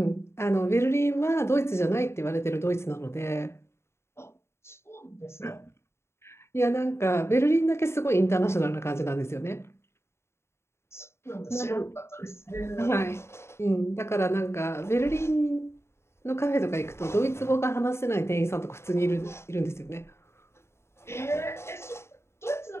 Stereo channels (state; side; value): late; right; 0.13 ms